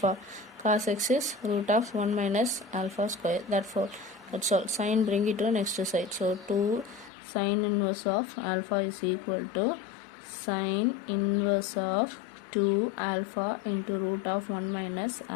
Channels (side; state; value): right; drops out; at 7.1 s